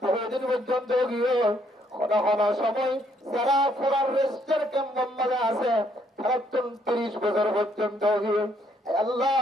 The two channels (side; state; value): both; normal; correlation 0.69